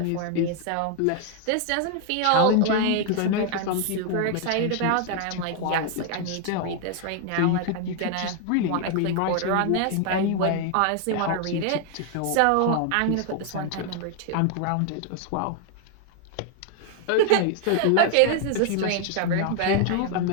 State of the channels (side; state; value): both; different; correlation 0.00